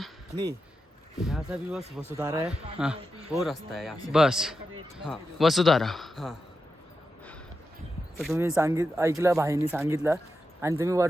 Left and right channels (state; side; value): normal; both; correlation 0.89